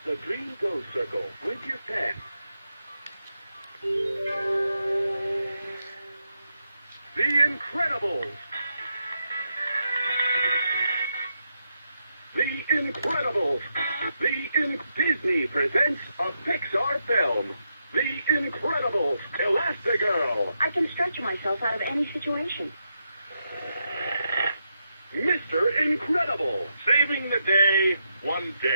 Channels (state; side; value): inverted; both; correlation -0.83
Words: the green go circle with your pen. The Incredibles! The Incredibles! Disney presents a Pixar film. The Incredibles, Elastigirl. I can stretch myself out of any situation. Mr. Incredible, saving the day one